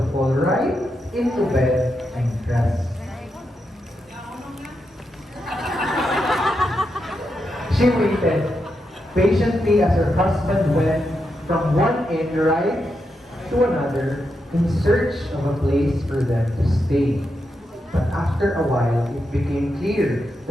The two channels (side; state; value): both; normal; correlation 0.85